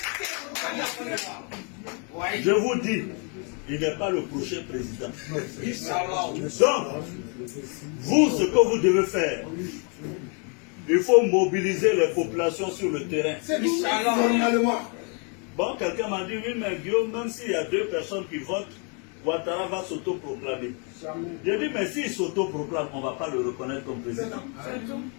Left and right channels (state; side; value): quieter; right; 37.0 dB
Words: Je vous dis, il n'est pas le prochain président. Donc, vous, ce que vous devez faire, il faut mobiliser les populations sur le terrain. Bon, quelqu'un m'a dit, oui, mais Guillaume, même s'il y a 2 personnes qui votent, Ouattara va s'autoproclamer. J'ai dit, mais s'il s'autoproclame, on ne va pas le reconnaître comme président.